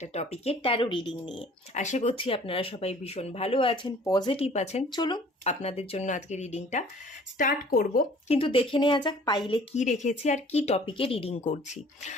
টপিকের ট্যারো রিডিং নিয়ে। আশা করছি আপনারা সবাই ভীষণ ভালো আছেন, পজিটিভ আছেন। চলুন আপনাদের জন্য আজকে রিডিংটা স্টার্ট করব, কিন্তু দেখে নেওয়া যাক পাইলে কি রেখেছি আর কি টপিকে রিডিং করছি।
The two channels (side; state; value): both; normal; correlation 0.52